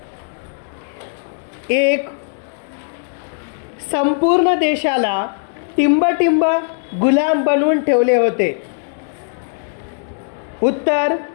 1. संपूर्ण देशाला टिंबटिंब गुलाम बनवून ठेवले होते. उत्तर,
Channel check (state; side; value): silent; right; digital silence